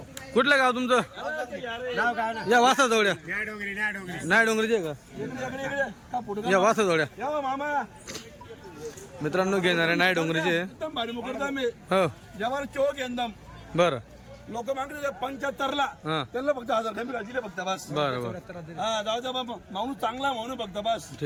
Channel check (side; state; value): both; identical; correlation 1.00